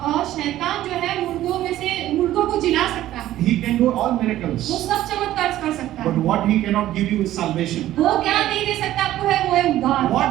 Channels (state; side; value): quieter; left; 13.9 dB